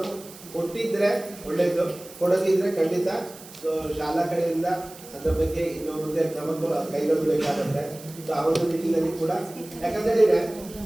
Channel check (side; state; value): right; noise; hiss, 18 dB below the sound